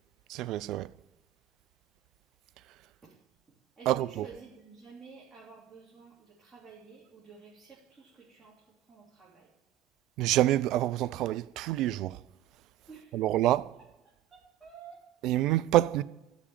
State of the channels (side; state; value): left; quieter; 13.9 dB